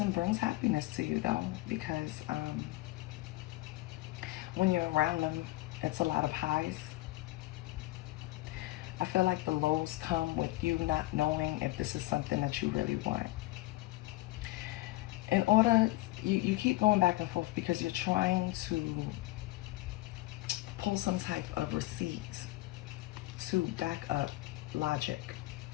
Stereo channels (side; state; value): right; quieter; 18.7 dB